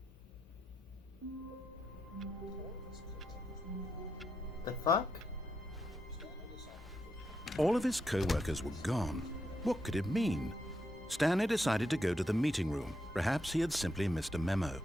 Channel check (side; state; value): both; normal; correlation 0.83